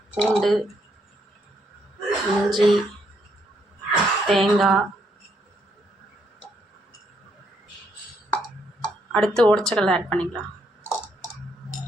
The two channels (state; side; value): normal; both; correlation 0.74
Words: பூண்டு, இஞ்சி, தேங்காய், அடுத்து உடச்சக்கடலை ஆட் பண்ணிக்கலாம்.